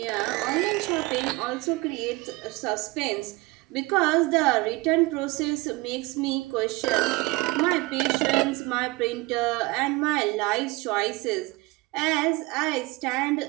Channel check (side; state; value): left; quieter; 23.2 dB